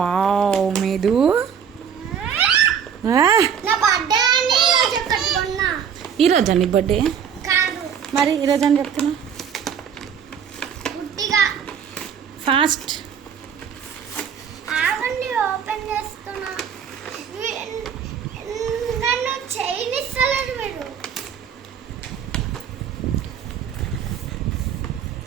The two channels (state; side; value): quieter; left; 7.7 dB